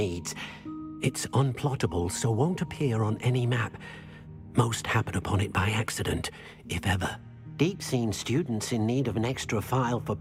It's unplottable, so won't appear on any map. Most happen upon it by accident, if ever. Deke's seen students in need of an extra file for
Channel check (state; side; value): identical; both; correlation 1.00